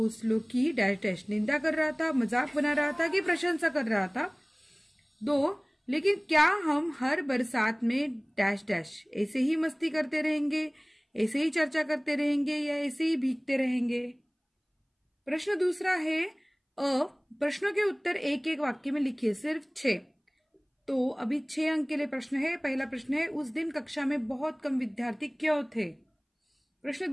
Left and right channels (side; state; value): both; identical; correlation 1.00